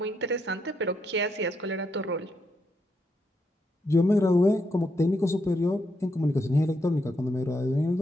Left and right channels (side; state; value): both; normal; correlation 0.79